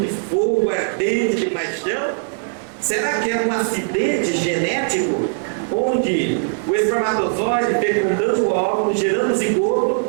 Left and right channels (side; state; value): left; silent; 66 dB below the other